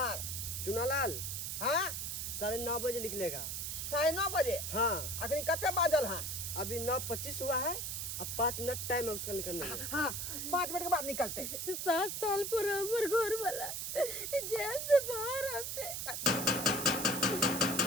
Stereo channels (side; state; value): right; noise; hiss, 3 dB below the sound